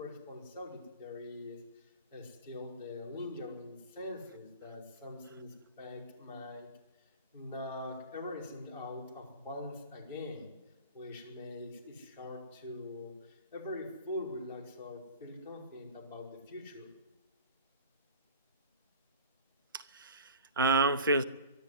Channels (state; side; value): inverted; both; correlation -0.36